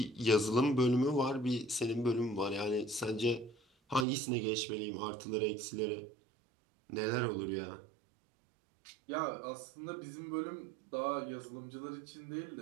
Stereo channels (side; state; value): left; drops out; at 4.0 s